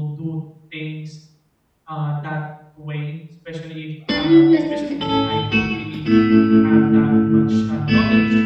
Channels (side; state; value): both; identical; correlation 1.00